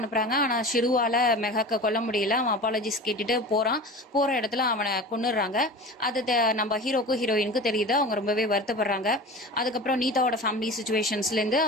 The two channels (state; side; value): normal; both; correlation 0.33